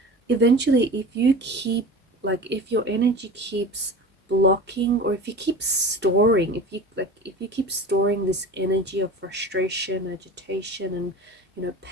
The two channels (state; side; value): normal; both; correlation 0.34